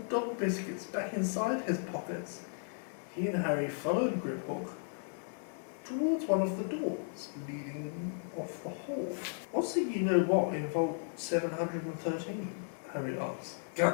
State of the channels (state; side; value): silent; right; 54 dB below the other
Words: biscuits back inside his pockets, he and Harry followed Griphook towards one of the doors leading off the hall. What's the you-know-what in Vault 713? Harry asked.